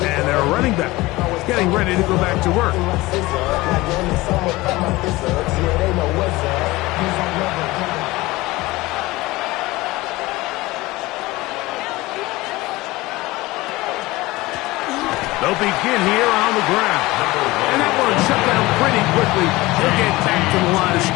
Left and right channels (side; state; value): right; quieter; 20.1 dB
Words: and their running back getting ready to go back to work. They'll begin here on the ground. And that one shut down pretty quickly. They'll get back to the line of